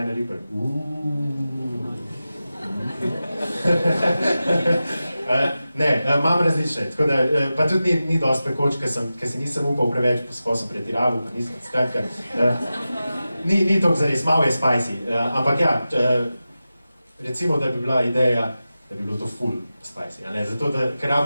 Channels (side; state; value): both; inverted; correlation -0.94